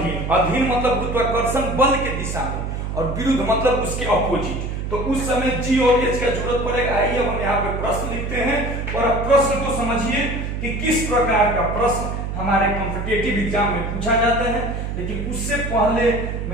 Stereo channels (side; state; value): right; noise; hum, 4 dB below the sound